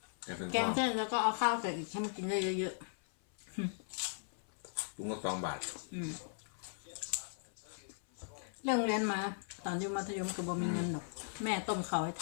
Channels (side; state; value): right; silent; 52 dB below the other